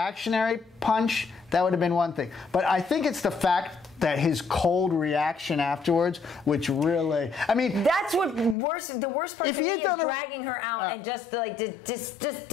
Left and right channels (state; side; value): drops out; right; at 8.6 s